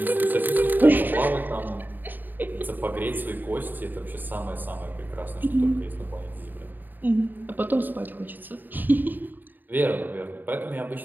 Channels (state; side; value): late; left; 0.089 ms